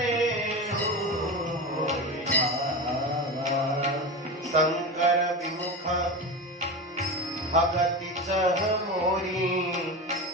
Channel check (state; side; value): normal; both; correlation 0.23